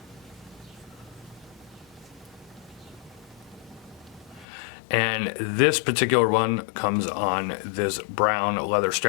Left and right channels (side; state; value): right; drops out; at 4.5 s